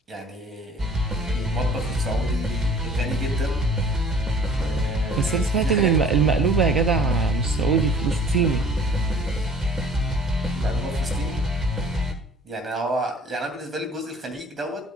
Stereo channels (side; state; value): both; normal; correlation 0.51